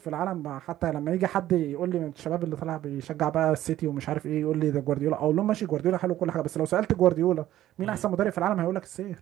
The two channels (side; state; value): left; quieter; 13.4 dB